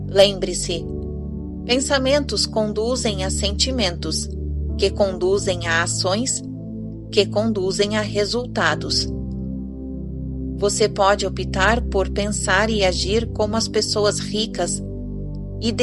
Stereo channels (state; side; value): identical; both; correlation 1.00